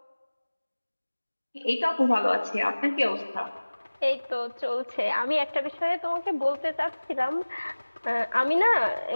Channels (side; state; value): both; inverted; correlation -1.00